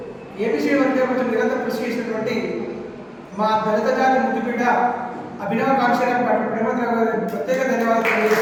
ఏబీసీ వర్గం కోసం నిరంతరం కృషి చేసినటువంటి మా దళిత జాతి ముద్దుబిడ్డ అభినవ కాంక్షరావు పాటు ప్రేమరావు గారికి ప్రత్యేక ధన్యవాదాలు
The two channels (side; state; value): both; identical; correlation 1.00